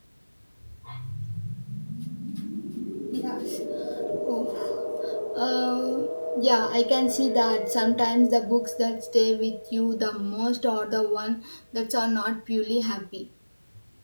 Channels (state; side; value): inverted; both; correlation -1.00